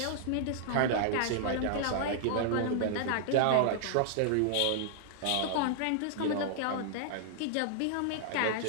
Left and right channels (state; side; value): different; both; correlation -0.01